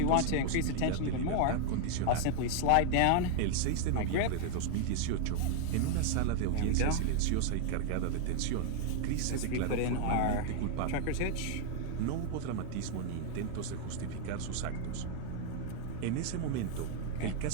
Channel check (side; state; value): both; different; correlation 0.00